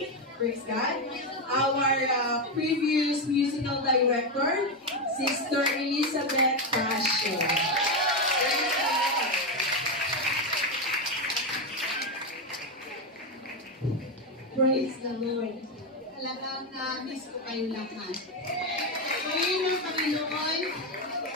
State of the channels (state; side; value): normal; both; correlation 0.09